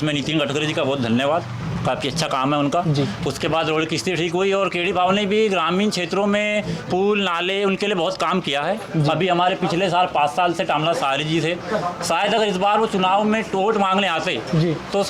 नितिन गडकरी जी का बहुत धन्यवाद, काफ़ी अच्छा काम है उनका। उसके बाद रोड की स्थिति ठीक हुई और केडी बाबू ने भी ग्रामीण क्षेत्रों में पुल नाले उनके लिए बहुत काम किया है। अभी हमारे पिछले साल 5 साल से टामला सारी जी थे, शायद अगर इस बार वो चुनाव में वोट मांगने आते तो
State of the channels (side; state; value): both; identical; correlation 1.00